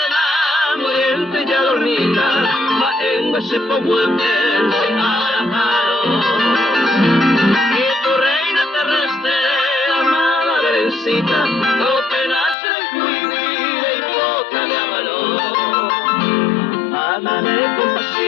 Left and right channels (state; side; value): drops out; right; at 12.6 s